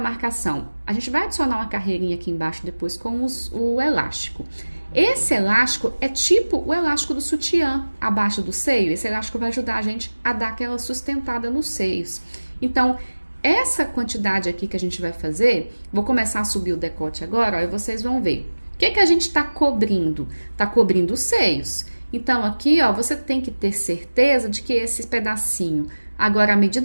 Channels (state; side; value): inverted; both; correlation -1.00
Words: A gente vai adicionar uma carreirinha aqui embaixo depois com o elástico. Esse elástico é tipo o elástico do sutiã abaixo do seio. Esse elástico vai ajudar a gente a dar aquela sustentada nos seios. Então, essa quantidade aqui que a gente vai fazer, vou começar a subir o decote agora, ó, e vocês vão ver. O que a gente tá cobrindo? Tá cobrindo os seios. Então, aqui, ó, você tem que ter certeza de que esse pedacinho, agora, à